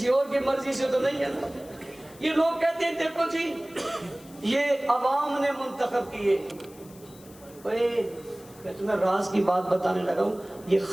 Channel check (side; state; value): left; noise; hiss, 23 dB below the sound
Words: اور کی مرضی سے تو نہیں ہے نا. یہ لوگ کہتے ہیں دیکھو جی یہ عوام نے منتخب کیے. میں تمہیں راز کی بات بتانے لگا ہوں، یہ